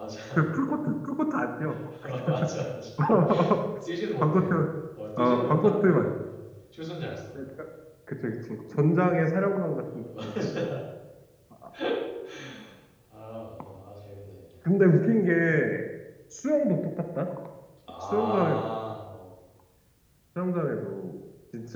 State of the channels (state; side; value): identical; both; correlation 1.00